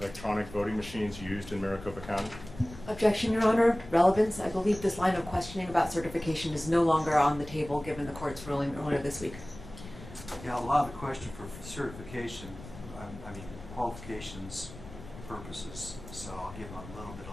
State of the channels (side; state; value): left; noise; rumble, 15 dB below the sound